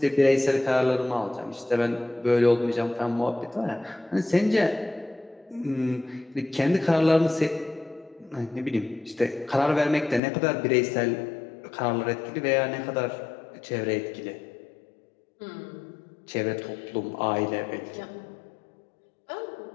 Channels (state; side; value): drops out; right; at 10.2 s